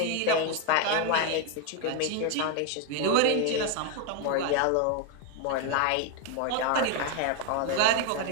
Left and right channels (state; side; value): different; both; correlation 0.01